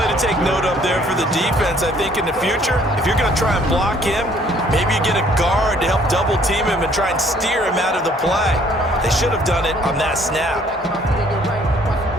to take note of there for the defense. I think in the future, if you're going to try and block him, maybe you get a guard to help double team him and try and steer him out of the play. They should have done it on that snap.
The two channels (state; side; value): normal; both; correlation 0.60